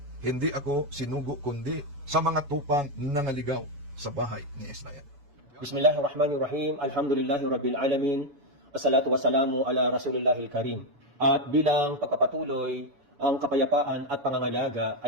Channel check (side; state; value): left; late; 7.0 ms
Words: hindi ako sinugo kundi sa mga tupang nangaligaw sa bahay ni Israel. Bismillahirrahmanirrahim. Alhamdulillahi Rabbil Alamin. Assalatu wassalamu ala Rasulillahil Karim. At bilang pagpapatuloy, ang kapayapaan at pangangalaga